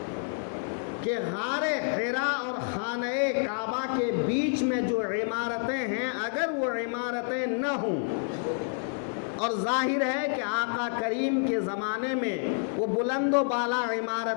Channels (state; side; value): silent; right; 57 dB below the other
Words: کہ غار حرا اور خانہ کعبہ کے بیچ میں جو عمارتیں ہیں، اگر وہ عمارتیں نہ ہوں، اور ظاہر ہے کہ آقا کریم کے زمانے میں وہ بلند و بالا